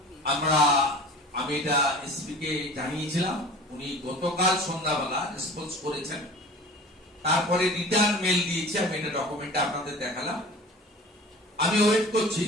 আমি এটা এসপি কে জানিয়েছিলাম, উনি গতকাল সন্ধ্যাবেলা রেসপন্স করেছেন। তারপরে রিটার্ন মেল দিয়েছে, আমি এটা ডকুমেন্টে আপনাদের দেখালাম। আমি ওয়েট করছি,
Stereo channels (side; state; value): both; normal; correlation 0.41